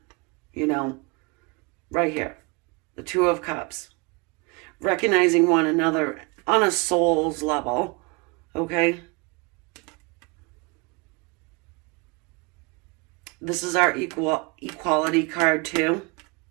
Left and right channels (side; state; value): left; quieter; 28.6 dB